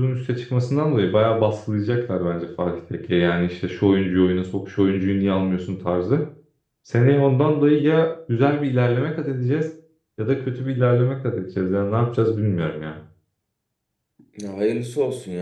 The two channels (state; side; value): identical; both; correlation 1.00